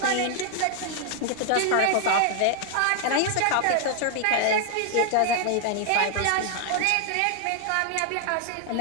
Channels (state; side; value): different; both; correlation 0.00